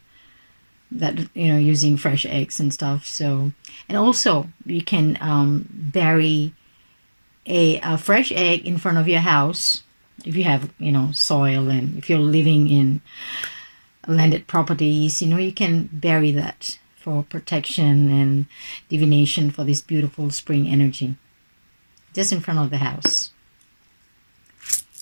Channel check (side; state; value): both; inverted; correlation -1.00